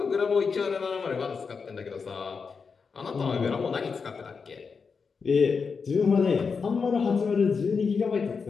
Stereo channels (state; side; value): quieter; right; 5.3 dB